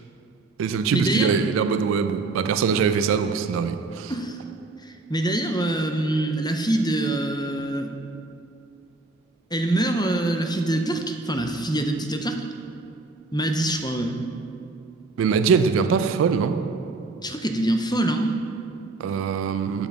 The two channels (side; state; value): left; quieter; 3.4 dB